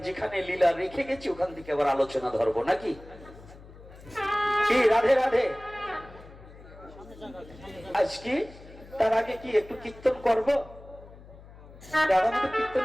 যেখানে লীলা রেখে গেছি ওখান থেকে আবার আলোচনা ধরবো নাকি? কি রাধে রাধে। আজকে তার আগে কি একটু কীর্তন করবো? কীর্তন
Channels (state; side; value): noise; left; hum, 19 dB below the sound